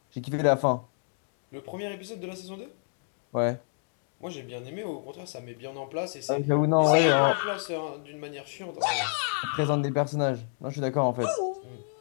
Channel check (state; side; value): silent; right; digital silence